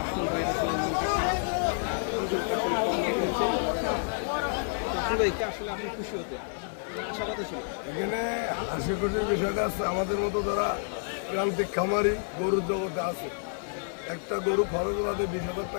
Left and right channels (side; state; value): right; silent; digital silence